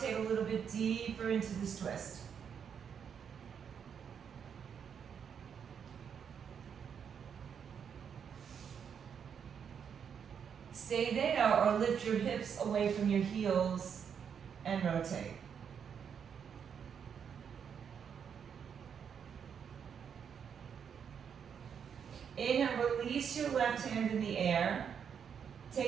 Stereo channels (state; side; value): quieter; left; 7.4 dB